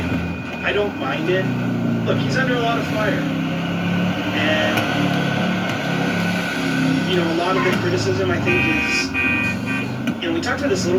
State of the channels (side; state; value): both; identical; correlation 1.00